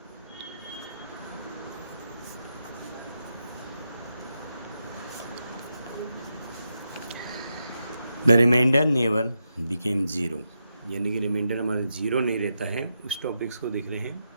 The remainder never became zero. यानी कि रिमाइंडर हमारा जीरो नहीं रहता है. उस टॉपिक्स को देख रहे हैं.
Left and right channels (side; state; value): both; inverted; correlation -0.86